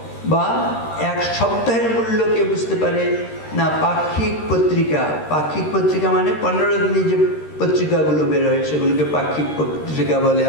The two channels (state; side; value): late; right; 13 ms